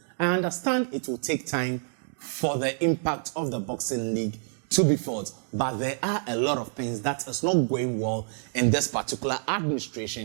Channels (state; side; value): silent; left; digital silence